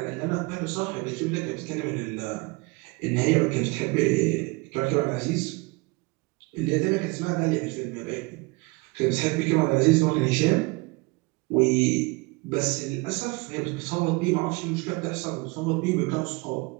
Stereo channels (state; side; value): quieter; left; 26.2 dB